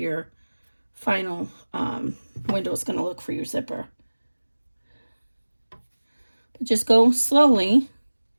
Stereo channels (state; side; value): inverted; both; correlation -1.00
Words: final window is going to look for your zipper. But just go slowly